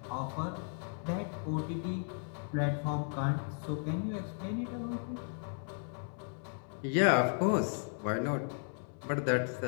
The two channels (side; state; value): right; silent; 54 dB below the other